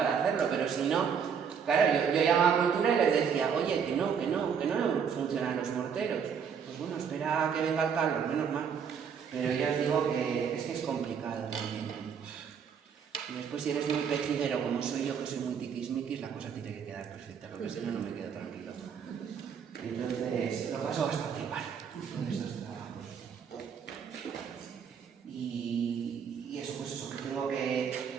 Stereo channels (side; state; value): left; quieter; 7.1 dB